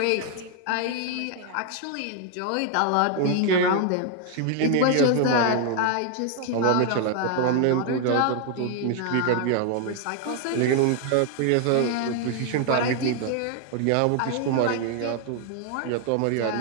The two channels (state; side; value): different; both; correlation 0.00